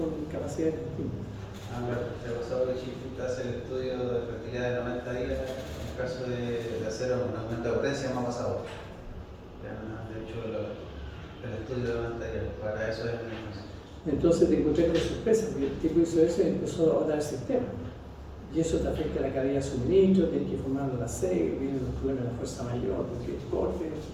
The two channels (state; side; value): identical; both; correlation 1.00